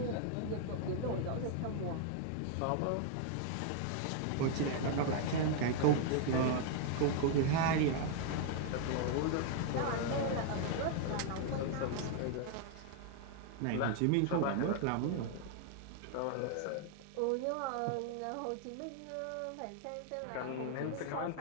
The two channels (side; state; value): both; different; correlation 0.00